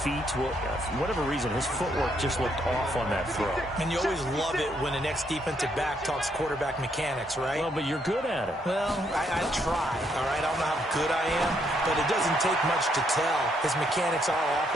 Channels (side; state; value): both; normal; correlation 0.73